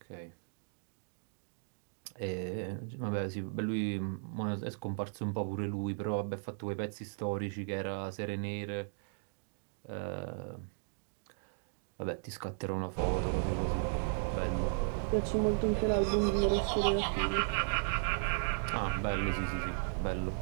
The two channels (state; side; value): silent; left; digital silence